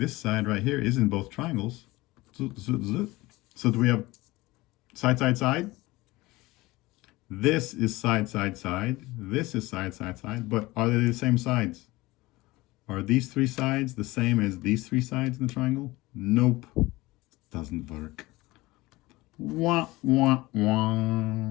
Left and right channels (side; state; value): right; quieter; 20.3 dB